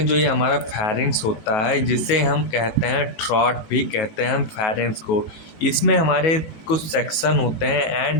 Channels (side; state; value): right; late; 19 ms